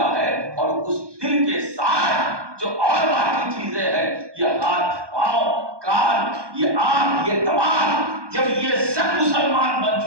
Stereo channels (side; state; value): left; late; 1.2 ms